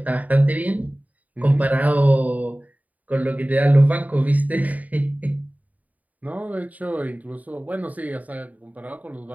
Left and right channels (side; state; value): left; late; 0.074 ms